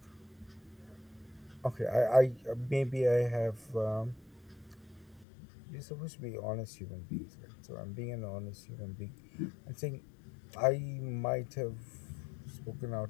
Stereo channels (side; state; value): right; drops out; at 5.2 s